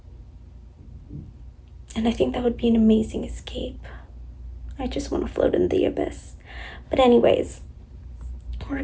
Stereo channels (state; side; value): identical; both; correlation 1.00